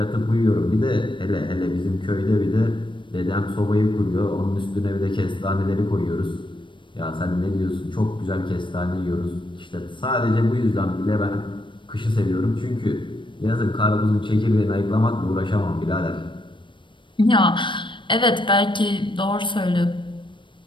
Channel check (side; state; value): right; late; 0.24 ms